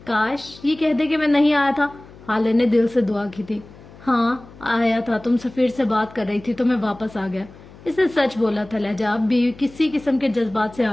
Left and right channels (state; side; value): noise; left; hum, 21 dB below the sound